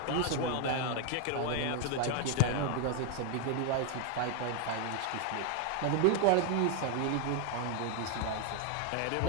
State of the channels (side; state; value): both; different; correlation 0.00